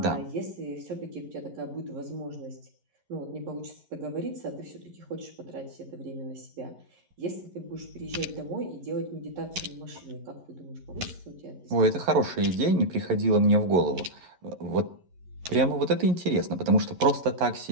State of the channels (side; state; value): left; late; 11 ms